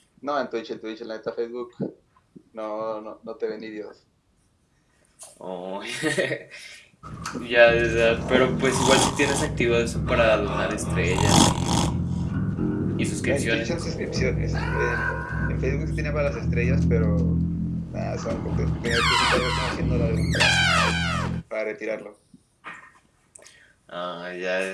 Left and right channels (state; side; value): identical; both; correlation 1.00